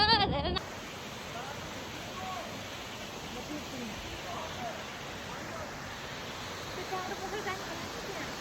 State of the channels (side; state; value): both; identical; correlation 1.00